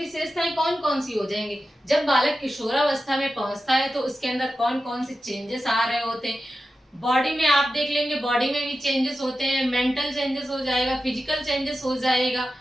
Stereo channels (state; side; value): normal; both; correlation 0.92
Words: कौन कौन सी हो जाएंगी? जब बालक किशोरावस्था में पहुंचता है तो उसके अंदर कौन कौन से चेंजेस आ रहे होते हैं? बॉडी में आप देख लेंगे, बॉडी में भी चेंजेस होते हैं, मेंटल चेंजेस हो जाएगा, फिजिकल चेंजेस हो जाएगा,